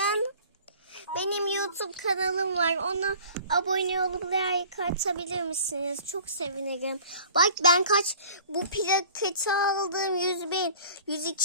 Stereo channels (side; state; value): both; inverted; correlation -0.47